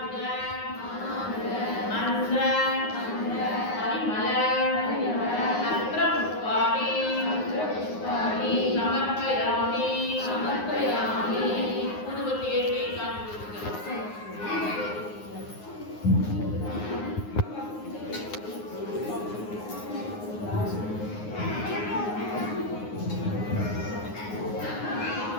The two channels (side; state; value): right; late; 9.6 ms